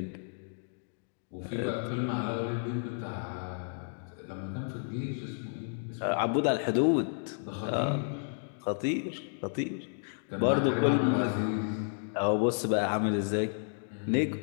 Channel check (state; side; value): silent; right; digital silence